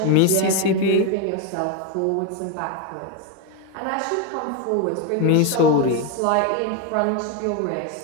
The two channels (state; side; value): different; both; correlation 0.02